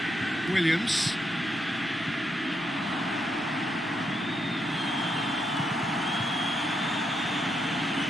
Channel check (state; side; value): normal; both; correlation 0.79